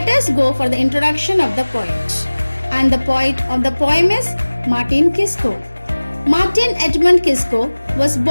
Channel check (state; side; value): inverted; both; correlation -1.00